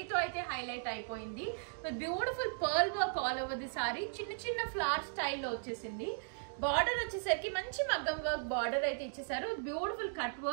అయితే హైలైట్ అయిపోయింది. With beautiful pearl work all over the sorry. చిన్న చిన్న ఫ్లవర్ స్టైల్లో వచ్చేసింది. బార్డర్ వచ్చేసరికి మంచి మగ్గం వర్క్ బార్డర్ అయితే ఇచ్చేసారు. Beautiful cut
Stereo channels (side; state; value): left; silent; digital silence